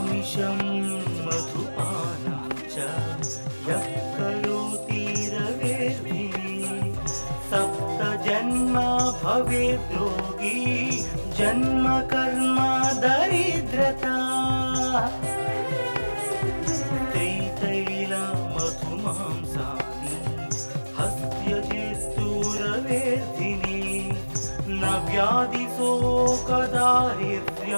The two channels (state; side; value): inverted; both; correlation -1.00